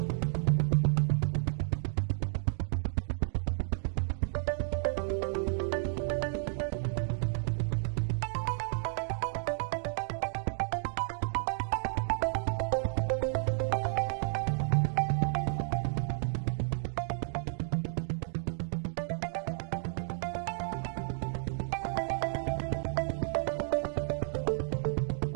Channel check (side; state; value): left; silent; digital silence